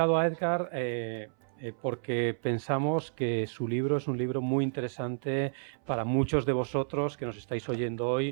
a Edgar porque pensamos que su libro es un libro muy interesante para muchos de vosotros que nos estáis oyendo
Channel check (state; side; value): silent; left; 57 dB below the other